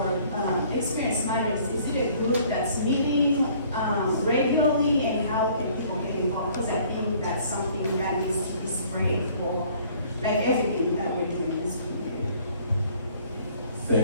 matters. Is it a group that's meeting regularly, and how can people get involved? Because I think that's something that needs to be spread for like everything that we're doing in this community.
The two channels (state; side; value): inverted; both; correlation -0.56